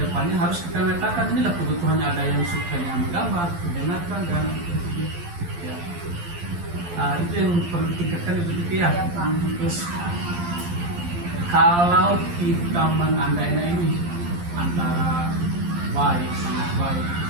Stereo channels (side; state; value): left; late; 12 ms